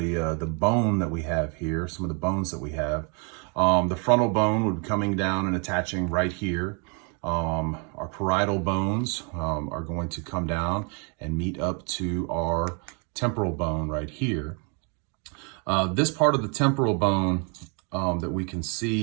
bone that we have here, some of the bones that we have. The frontal bone would be coming down and attaching right here. Our parietal bones are going to come down and meet up to our temporal bone right here. This part of the temporal bone that we can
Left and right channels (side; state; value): left; quieter; 35.9 dB